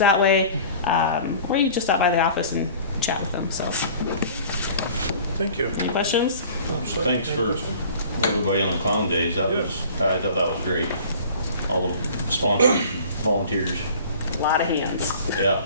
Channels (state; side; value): inverted; both; correlation -0.45